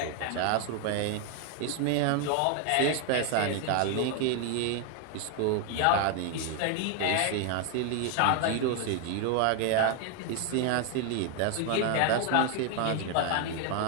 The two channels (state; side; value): different; both; correlation 0.00